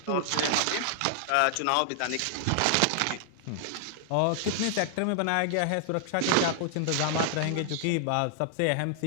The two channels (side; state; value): both; different; correlation 0.00